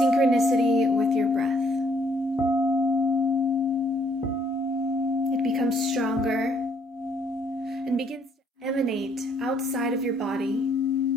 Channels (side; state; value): both; normal; correlation 0.65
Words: with your breath. It becomes stronger and begins to emanate outside of your body,